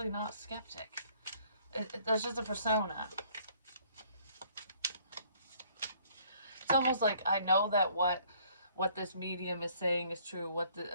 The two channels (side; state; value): both; inverted; correlation -0.60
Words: not skeptic. That's just a persona. It's almost like I know that what this medium is saying is true, what